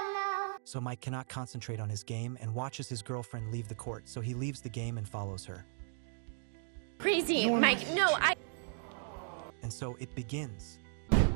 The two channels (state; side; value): silent; left; digital silence